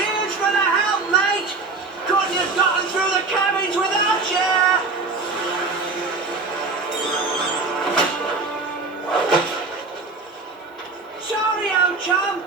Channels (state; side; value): quieter; left; 3.9 dB